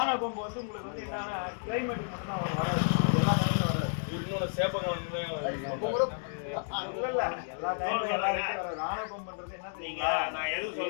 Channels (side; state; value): right; silent; digital silence